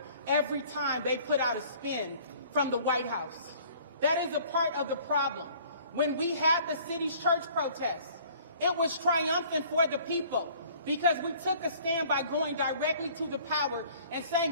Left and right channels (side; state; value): both; inverted; correlation -0.53